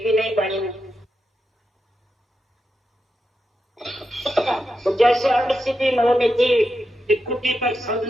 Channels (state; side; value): normal; both; correlation 0.87